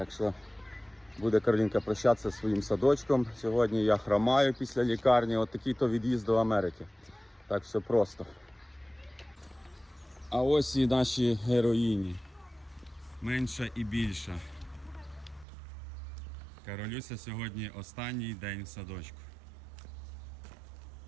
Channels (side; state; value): left; drops out; at 15.5 s